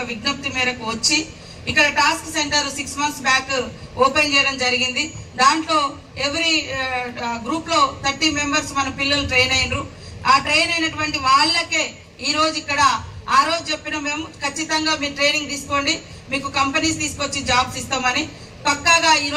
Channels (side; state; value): both; identical; correlation 1.00